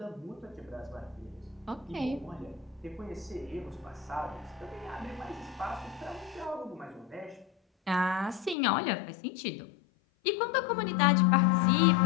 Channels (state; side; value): drops out; right; at 8.6 s